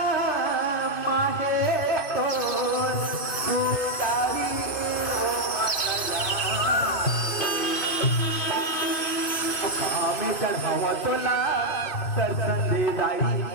चढ़ावा तोला दर्शन दे जाई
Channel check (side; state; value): right; late; 2.6 ms